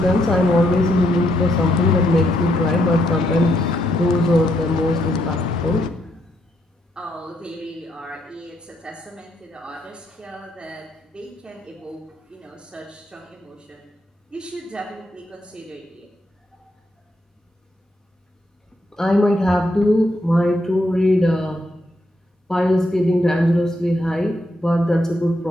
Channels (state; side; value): normal; both; correlation 0.77